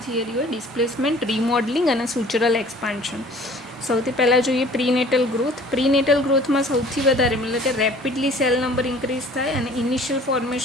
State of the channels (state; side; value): normal; both; correlation 0.50